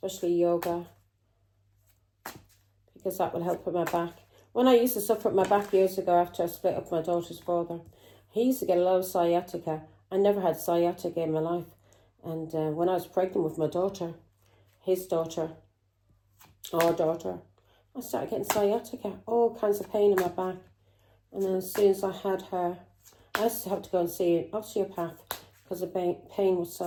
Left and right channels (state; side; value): identical; both; correlation 1.00